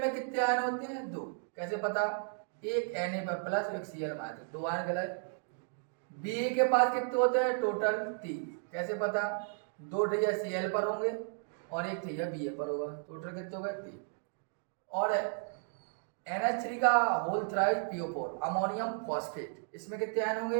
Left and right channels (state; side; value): silent; left; 55 dB below the other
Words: कितने आयन होते हैं? 2। कैसे पता? एक Na प्लस एक Cl माइनस, 2 आयन गलत। Ba के पास कितने होते हैं? टोटल 3। कैसे पता? 2 ठैया Cl पर होंगे और 1 ठैया Ba पर होगा, टोटल कितने हो गए? 3। और NH3 का whole thrice PO4 ammonium phosphate, इसमें कितने आयन